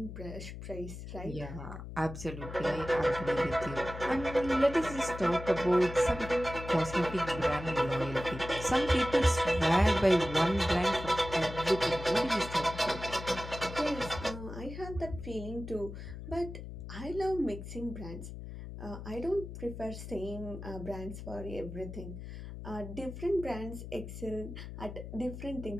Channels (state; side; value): noise; left; hum, 10 dB below the sound